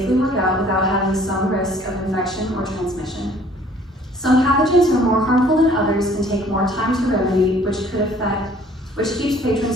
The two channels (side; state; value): both; normal; correlation 0.56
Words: work out without having some risk of infection or transmission. Some pathogens are more harmful than others and take more time to remedy, which keeps